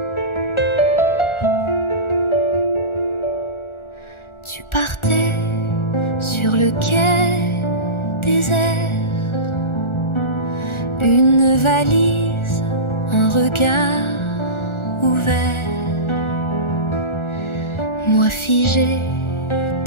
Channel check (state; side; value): late; right; 1.4 ms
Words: Tu partais sur le quai désert, une valise, un regard ouvert. Moi figé